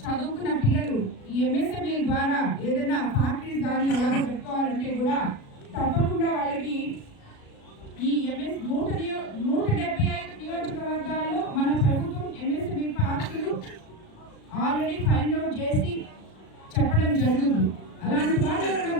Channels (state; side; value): late; right; 36 ms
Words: చదువుకున్న పిల్లలు ఈ ఎంఎస్ఎంఈ ద్వారా ఏదైనా ఫ్యాక్టరీస్ కానీ అలా పెట్టుకోవాలంటే కూడా తప్పకుండా వాళ్ళకి ఈ ఎంఎస్ 175 నియోజకవర్గాల్లో మన ప్రభుత్వం ఎంఎస్ఎంఈ పార్కులు ఆల్రెడీ ఫైండ్ అవుట్ చేసి చెప్పడం జరుగుతుంది. అలాంటి వాళ్ళు కూడా